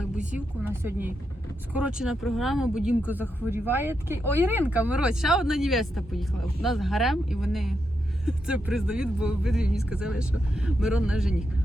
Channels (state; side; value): normal; both; correlation 0.84